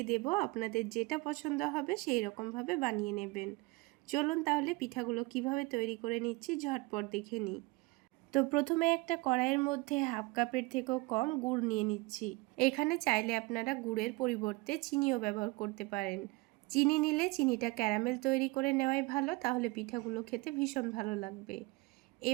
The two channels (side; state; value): left; quieter; 23.8 dB